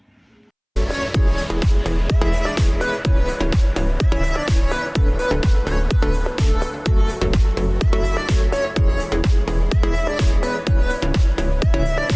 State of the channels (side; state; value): both; identical; correlation 1.00